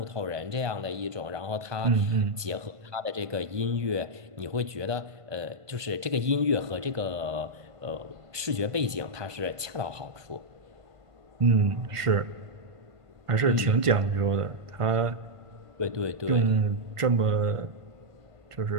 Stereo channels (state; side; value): late; left; 1.5 ms